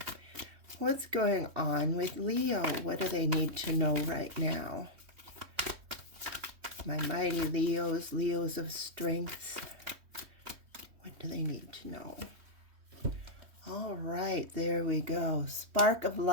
What's going on with Leo? What do they need to know right now? My mighty Leos, Leos of strength. What do they need to know? All right, there we go. Spark of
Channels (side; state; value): left; late; 3.1 ms